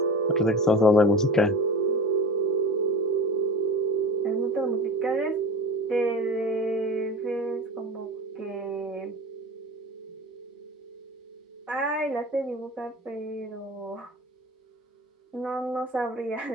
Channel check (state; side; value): normal; both; correlation 0.32